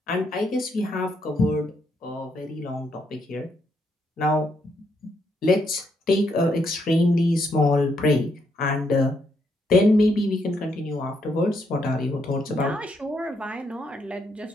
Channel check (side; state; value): both; normal; correlation 0.76